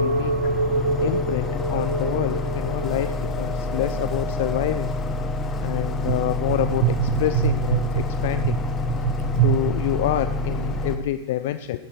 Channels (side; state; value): both; normal; correlation -0.03